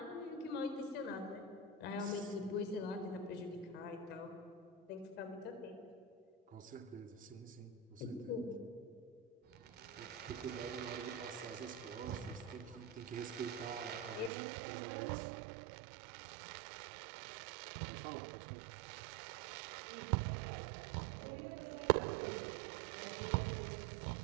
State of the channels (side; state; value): left; drops out; at 14.3 s